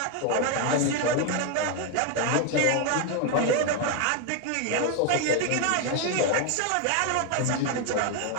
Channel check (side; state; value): both; different; correlation 0.01